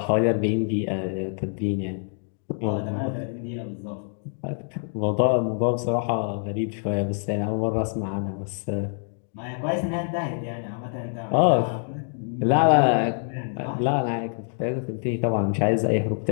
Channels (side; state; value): right; silent; 61 dB below the other